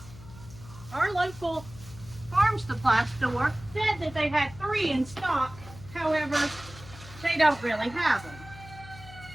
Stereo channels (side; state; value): left; noise; hum, 17 dB below the sound